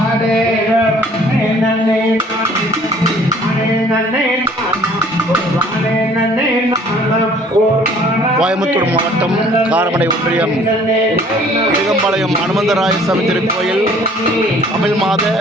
கோயம்புத்தூர் மாவட்டம் காரமடை ஒன்றியம் இடுகம்பாளையம் அனுமந்தராய சாமி திருக்கோயில் தமிழ் மாத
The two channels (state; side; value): normal; both; correlation 0.55